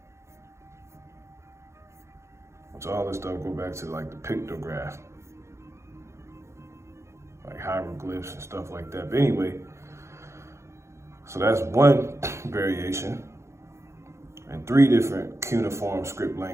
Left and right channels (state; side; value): late; left; 0.14 ms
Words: So all this stuff go back to like the pictograph, like hieroglyphs and stuff like that. But anyway, so that's one variation and 3 different cuneiform script